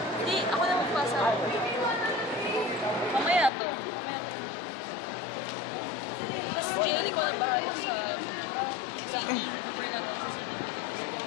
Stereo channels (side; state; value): right; drops out; at 3.5 s